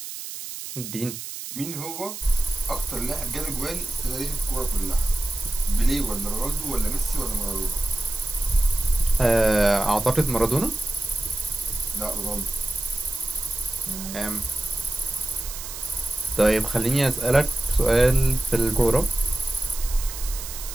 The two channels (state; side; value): noise; right; hiss, 9 dB below the sound